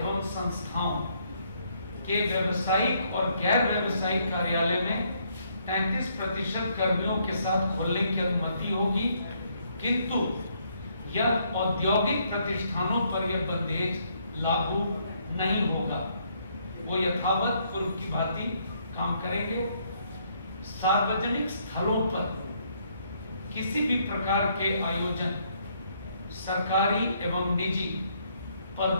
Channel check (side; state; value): both; inverted; correlation -0.70